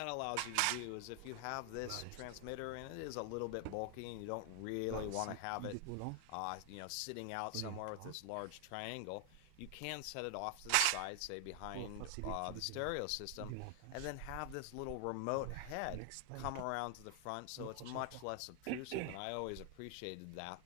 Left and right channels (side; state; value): both; different; correlation 0.00